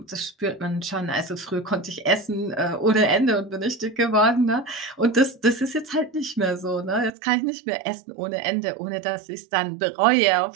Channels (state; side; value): drops out; left; at 7.1 s